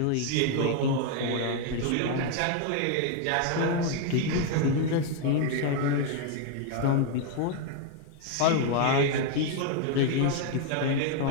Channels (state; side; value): different; both; correlation 0.01